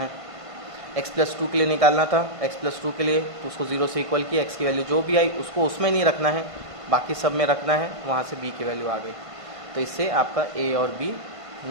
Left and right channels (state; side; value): late; left; 1.5 ms